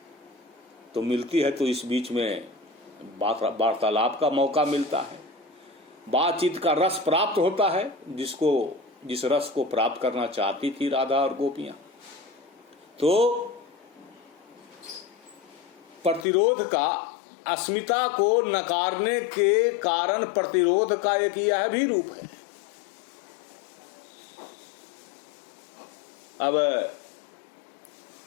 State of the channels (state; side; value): drops out; right; at 16.2 s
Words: तो मिलती है तो इस बीच में वार्तालाप का मौका मिलता है, बातचीत का रस प्राप्त होता है, जिस रस को प्राप्त करना चाहती थी राधा और गोपियां। तो प्रतिरोध का, अस्मिता को नकारने के कारण प्रतिरोध का एक यह भी रूप है। अब